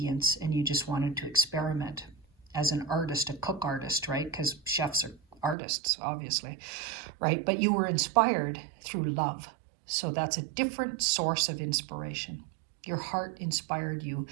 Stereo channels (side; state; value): left; drops out; at 5.6 s